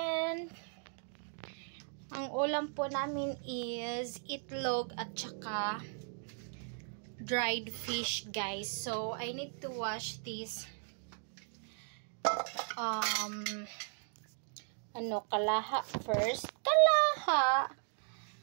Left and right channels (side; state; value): left; silent; 53 dB below the other